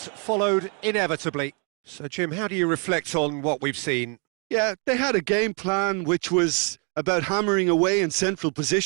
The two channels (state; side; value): quieter; left; 37.3 dB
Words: followed inevitably. So Jim, how do you reflect on what we've seen? Yeah, they had a game plan which was about hammering away in central